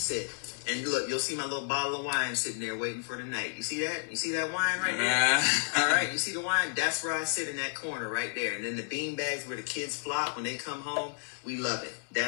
And look, you'll see my little bottle of wine sitting there waiting for the night. You see that? You see that wine right there? All right, you see the wine? That's where I sit in that corner right there. And then the bean bags where the kids flop when they come home. We love it.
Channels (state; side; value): silent; right; digital silence